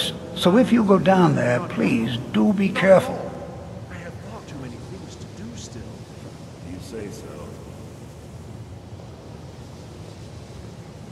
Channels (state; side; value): identical; both; correlation 1.00